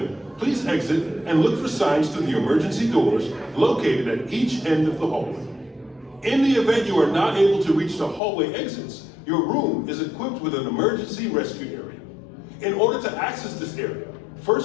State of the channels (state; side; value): drops out; right; at 8.2 s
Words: please exit and look for signs to the emergency doors located at each end of the hallway. In the event you are not able to reach the hallway exits, your room is equipped with an emergency rescue area. In order to access this area,